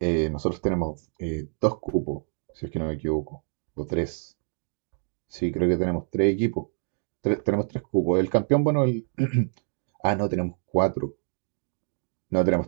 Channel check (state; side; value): silent; left; 56 dB below the other